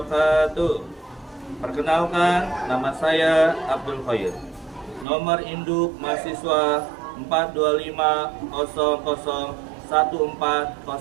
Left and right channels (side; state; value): left; drops out; at 5.1 s